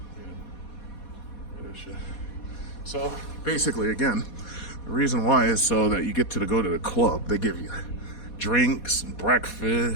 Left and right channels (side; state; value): right; late; 4.2 ms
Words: Look at this shit. So basically, again, the reason why is so that you get to go to the club. They give you drinks and